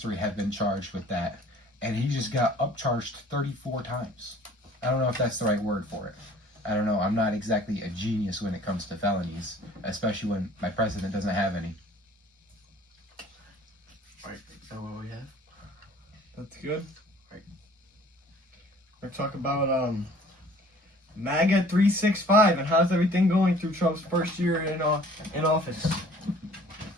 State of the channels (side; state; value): both; normal; correlation 0.52